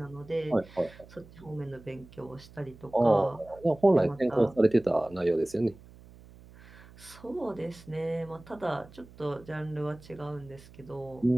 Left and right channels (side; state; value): right; noise; hum, 21 dB below the sound